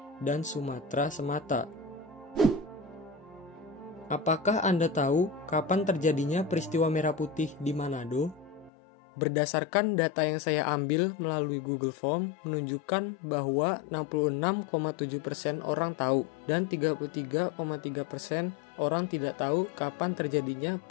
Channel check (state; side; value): drops out; right; at 8.7 s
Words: dan Sumatera semata. Apakah Anda tahu kapan terjadinya peristiwa Merah Putih di Manado? Berdasarkan data yang saya ambil melalui Google Form menunjukkan bahwa 66,7% orang tahu dan 33,3% orang tidak tahu kapan terjadinya